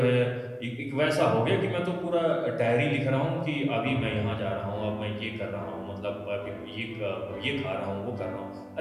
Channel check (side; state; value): both; identical; correlation 1.00